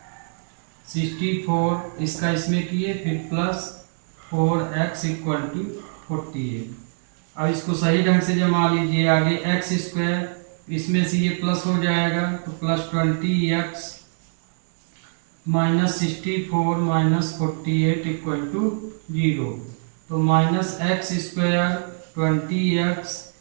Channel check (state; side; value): silent; left; digital silence